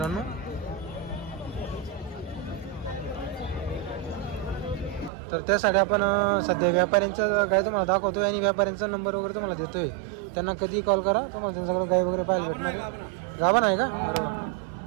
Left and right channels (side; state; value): left; drops out; at 5.1 s